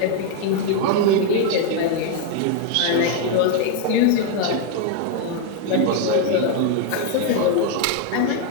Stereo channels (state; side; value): different; both; correlation 0.00